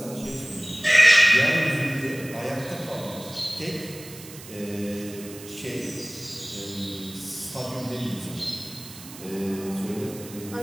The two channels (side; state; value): right; noise; hiss, 16 dB below the sound